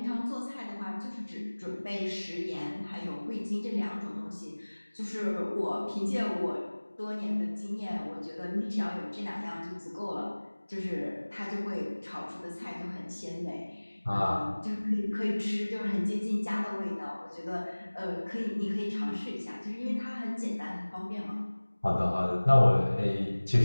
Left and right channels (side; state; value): both; inverted; correlation -1.00